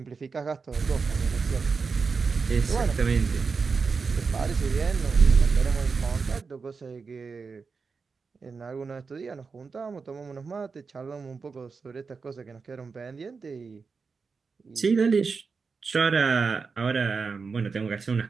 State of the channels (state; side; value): quieter; left; 4.9 dB